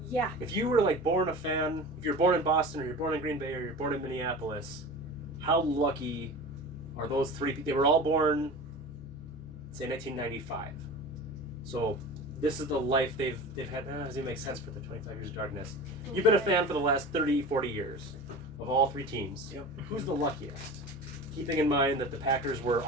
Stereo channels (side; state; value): right; noise; hum, 26 dB below the sound